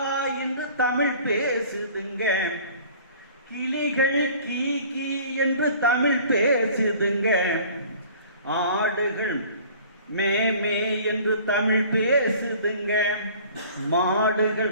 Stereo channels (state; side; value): inverted; both; correlation -0.49